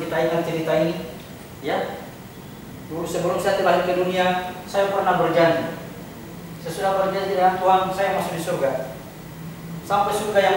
kita ingat cerita ini, ya. Dulu sebelum saya terlahir ke dunia, saya pernah berjanji. Sesudah berjanji dengan Tuhan, saya masuk di surga. Sampai surga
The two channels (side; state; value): both; identical; correlation 1.00